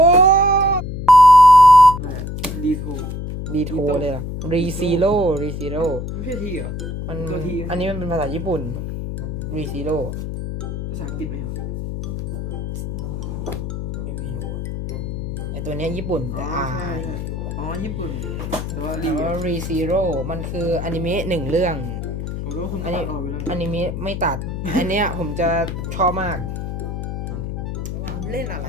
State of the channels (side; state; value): left; noise; hum, 5 dB below the sound